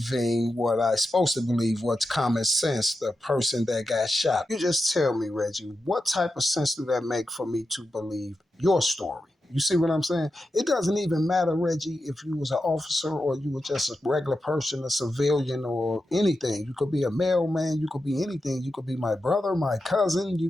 what I'm supposed to believe, what's common sense, the person that got shot. You just tell me, Reggie, what type of sense do that make for me to believe your story? You see what I'm saying? It doesn't even matter, Reggie, if you was an officer or you were just a regular person, a civilian or anything. You could be a mailman, you could be anything. You could be my brother, my cousin,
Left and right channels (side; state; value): both; normal; correlation 0.89